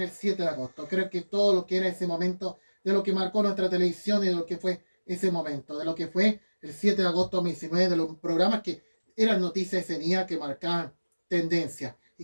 el 7 de agosto. Creo que todo lo que era ese momento de lo que marcó nuestra televisión y de lo que fue ese momento, de lo que fue el 7 de agosto de 2019, de los programas que eran noticias ese día que marcaban tendencia.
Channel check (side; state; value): both; inverted; correlation -1.00